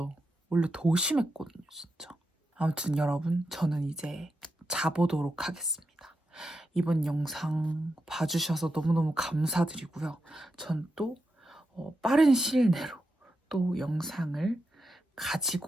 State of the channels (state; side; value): normal; both; correlation 0.87